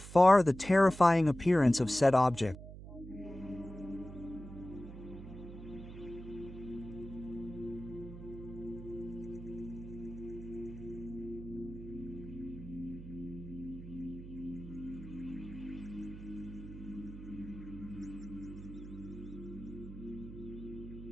the terrifying appearance of said object.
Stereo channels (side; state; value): right; noise; hum, 12 dB below the sound